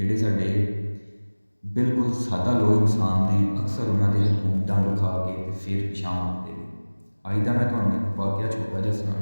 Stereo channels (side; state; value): both; inverted; correlation -1.00